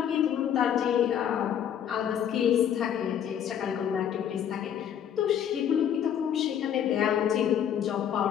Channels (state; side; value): quieter; right; 9.3 dB